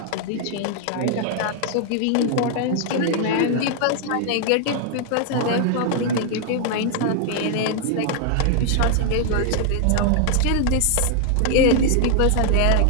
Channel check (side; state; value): both; different; correlation 0.00